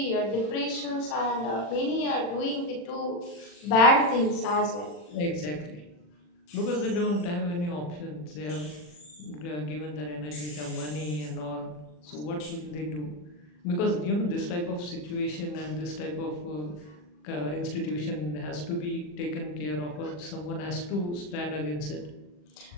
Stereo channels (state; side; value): late; right; 40 ms